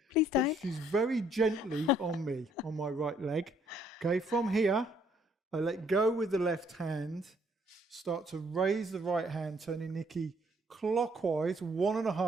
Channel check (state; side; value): normal; both; correlation 0.66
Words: Please don't. She's very gently on me, on my right leg. Okay, from here, I let go with the left hand, start to raise the right hand, turning Nikki clockwise,